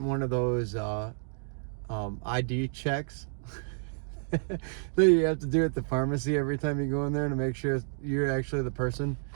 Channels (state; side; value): silent; left; digital silence